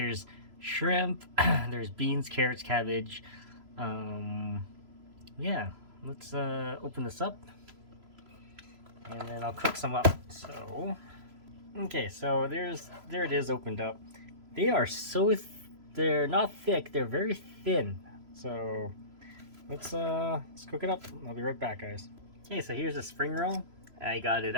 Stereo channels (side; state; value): left; late; 3.0 ms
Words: shrimp, there's beans, carrots, cabbage. Yeah, let's open this up. And then I'll cook some up. So, okay, so there it is opened up. They are they're not thick, they're very thin. So let's cook it up. I'll be right back, guys. Okay, so here's a spring roll. I got it